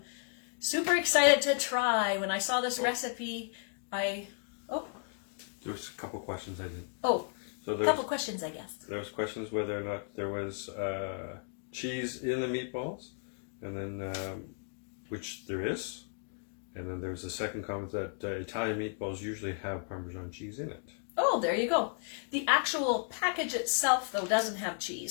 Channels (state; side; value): silent; right; 55 dB below the other